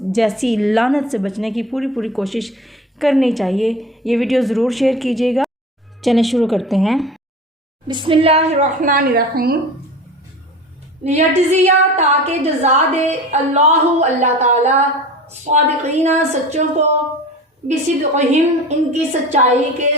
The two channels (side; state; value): both; normal; correlation 0.36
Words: جیسی لعنت سے بچنے کی پوری کوشش کرنی چاہیے۔ یہ ویڈیو ضرور شیئر کیجیے گا۔ چلیں شروع کرتے ہیں۔ بسم اللہ الرحمن الرحیم۔ لیجزیہ، تاکہ جزا دے اللہ تعالیٰ صادقین، سچوں کو، بصدقہم، ان کی سچائی کے